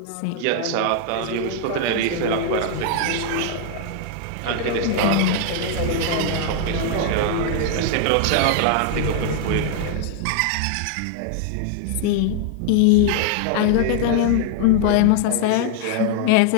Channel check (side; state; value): both; different; correlation 0.00